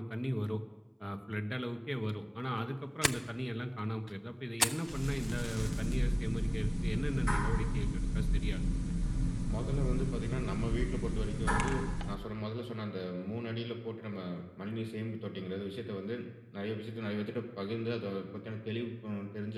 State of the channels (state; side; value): identical; both; correlation 1.00